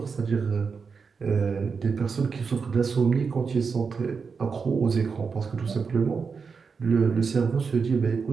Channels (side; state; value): left; quieter; 5.4 dB